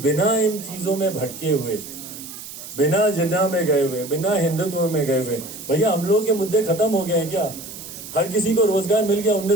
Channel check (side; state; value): right; noise; hiss, 12 dB below the sound